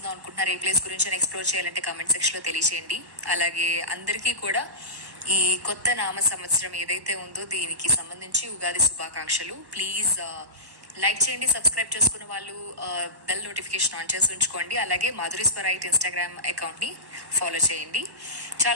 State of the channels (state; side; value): late; left; 1.1 ms